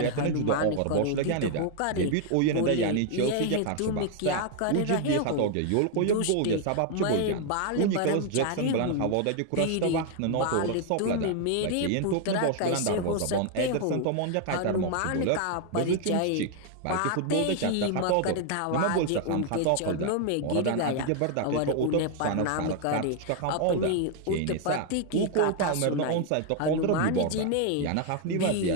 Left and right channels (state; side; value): different; both; correlation 0.00